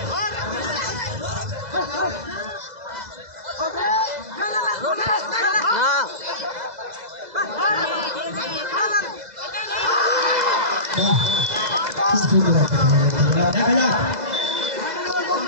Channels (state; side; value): late; left; 2.0 ms